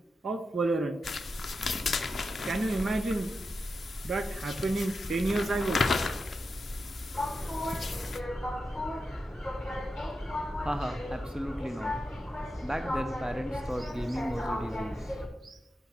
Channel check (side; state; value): both; normal; correlation 0.89